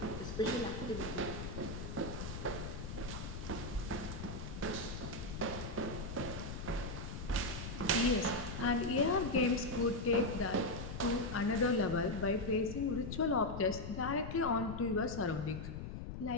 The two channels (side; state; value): left; noise; rumble, 7 dB below the sound